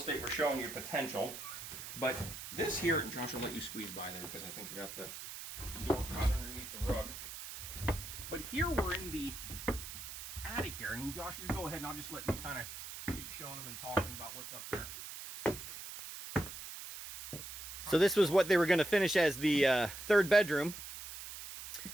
we're showing you potential. But this here, and Josh will let you squeeze by there because I think I got the door caught underneath the rug. But here we're in the attic area. And Josh, you go ahead and I'll just let you kind of keep showing them and talking about what's up there. So this was what they were going to finish as the third bedroom.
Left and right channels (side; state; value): right; noise; hiss, 10 dB below the sound